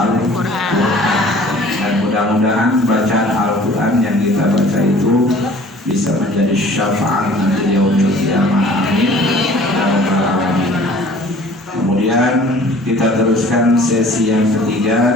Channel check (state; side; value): normal; both; correlation 0.50